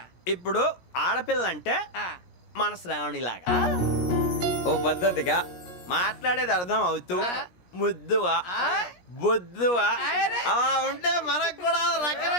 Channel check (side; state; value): right; late; 17 ms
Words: ఇప్పుడు ఆడపిల్ల అంటే మన శ్రావణిలాగా ఓ పద్ధతిగా మాట్లాడేది అర్థం అవుతూ ముద్దువా బొద్దువా అలా ఉంటే మనకు కూడా